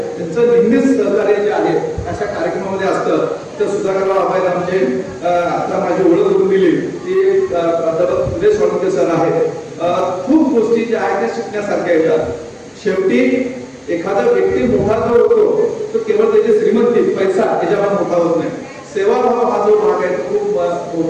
त्यांचं नेहमीच सहकार्य जे आहे अशा कार्यक्रमामध्ये असतं. तर सुधाकरराव आबायला म्हणजे आता माझी ओळख करून दिली ती प्राध्यापक सुरेश वाळुंके सर आहेत. खूप गोष्टी ज्या आहेत त्या शिकण्यासारख्या येतात. शेवटी एखादा व्यक्ती मोठा जो होतो तो केवळ त्याची श्रीमंती पैसा याच्यावर मोठा होत नाही. सेवाभाव हा जो भाग आहे तो खूप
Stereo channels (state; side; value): identical; both; correlation 1.00